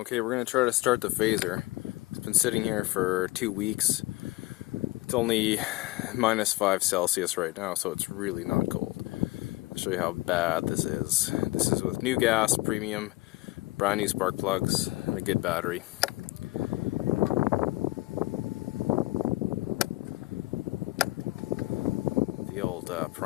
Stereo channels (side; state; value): right; quieter; 19.8 dB